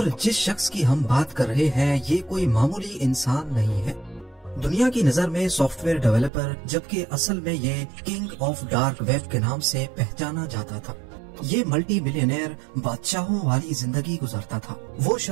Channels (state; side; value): drops out; left; at 6.3 s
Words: जिस शख्स की हम बात कर रहे हैं ये कोई मामूली इंसान नहीं है। दुनिया की नजर में सॉफ्टवेयर डेवलपर, जबकि असल में ये किंग ऑफ डार्क वेब के नाम से पहचाना जाता था। ये मल्टी मिलियनेयर बादशाहों वाली जिंदगी गुजारता था। वो